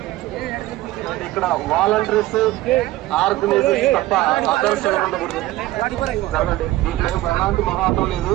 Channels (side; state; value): left; quieter; 16.7 dB